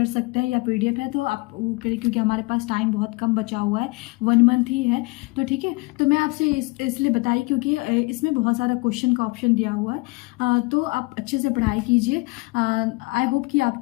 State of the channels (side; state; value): right; quieter; 26.3 dB